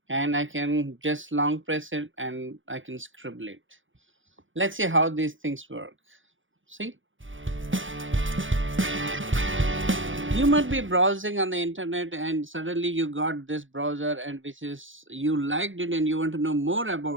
And I can just long press it and I can scribble it. Let's see how these things work. See? You might be browsing on the internet and suddenly you got this browser and which is you liked it and you want to know more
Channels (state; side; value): late; left; 0.57 ms